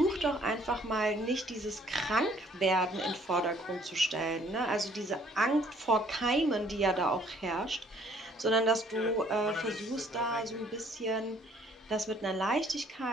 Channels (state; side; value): normal; both; correlation 0.61